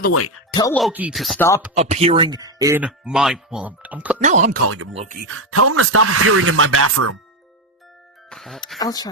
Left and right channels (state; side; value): normal; both; correlation 0.08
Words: the way, tell Loki to stop appearing in my. Well, now I'm calling him Loki. Tell him to stop appearing in my bathroom. I'll